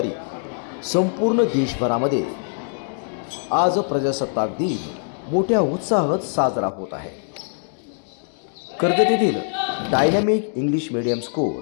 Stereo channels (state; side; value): silent; right; digital silence